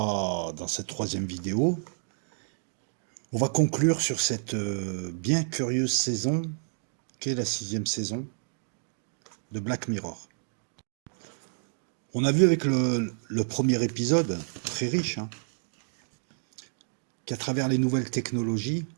dans cette troisième vidéo, on va conclure sur cette bien curieuse saison, qu'est la 6e saison de Black Mirror. On a vu avec le premier épisode, très riche, qu'à travers les nouvelles technologies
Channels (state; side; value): silent; left; digital silence